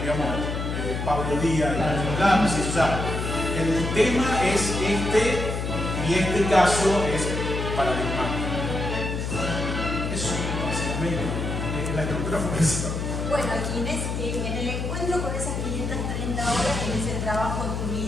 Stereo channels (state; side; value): noise; left; hum, 3 dB below the sound